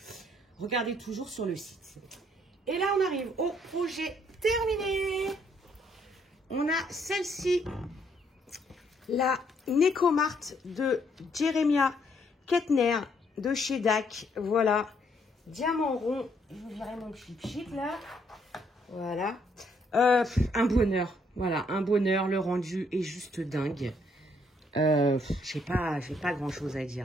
sur le site. Et là, on arrive au projet terminé. On a celle-ci, la Necomart de Jeremiah Kettner de chez DAC. Voilà, diamant rond. Je vous dirai mon chip là. Voilà. Un bonheur. Voilà, un bonheur. Le rendu est juste dingue. J'ai pas grand chose à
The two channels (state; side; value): normal; both; correlation 0.69